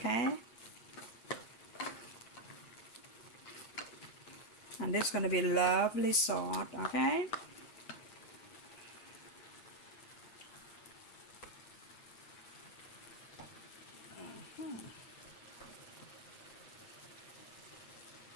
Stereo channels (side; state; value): right; late; 8.5 ms